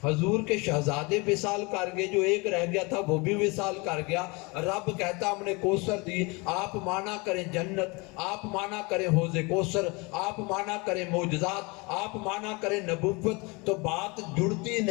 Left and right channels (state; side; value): quieter; right; 27.5 dB